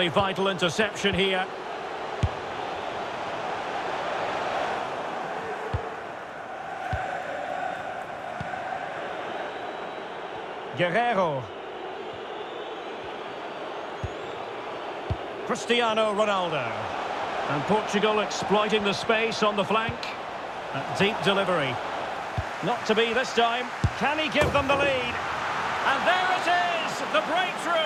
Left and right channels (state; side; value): identical; both; correlation 1.00